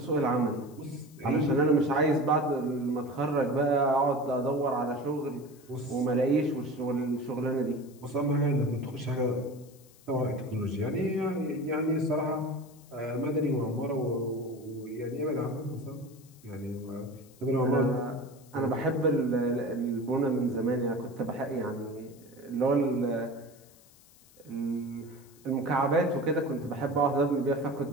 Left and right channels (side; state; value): left; noise; hiss, 26 dB below the sound